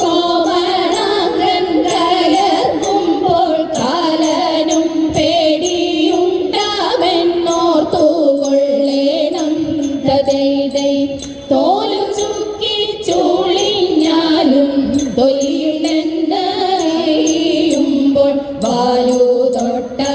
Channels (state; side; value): identical; both; correlation 1.00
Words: കോമളാംഗൻ കയർക്കുമ്പോൾ കാലനും പേടിയുണ്ടാമെന്നോർത്തുകൊള്ളേണം തദൈതൈ തോലു ചുക്കി ചുളിഞ്ഞാലും തൊലിയുണ്ടെന്നറിയുമ്പോൾ വാലു